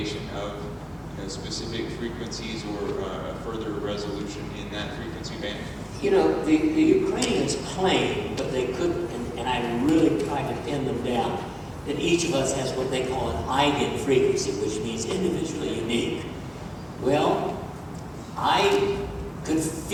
of specific frequencies or further resolution in that frequency band? The Ukrainians claim, but they couldn't, and I really tried to pin them down, that each of us has what they call an eigen frequency, which means individually unique. Well, I could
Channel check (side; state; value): both; identical; correlation 1.00